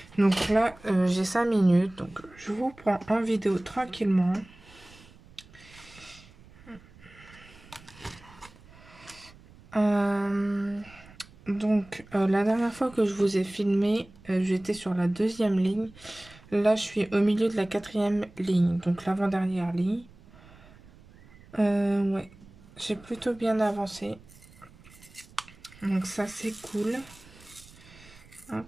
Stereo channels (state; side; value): noise; right; rumble, 23 dB below the sound